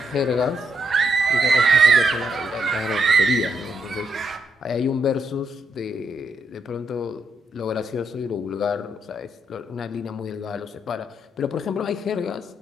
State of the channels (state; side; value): normal; both; correlation 0.76